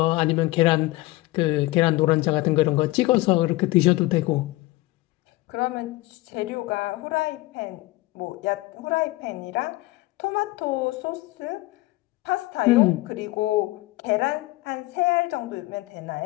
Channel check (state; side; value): quieter; right; 19.7 dB